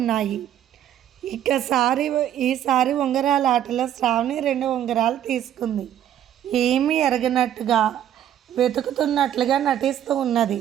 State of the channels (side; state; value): left; quieter; 10.8 dB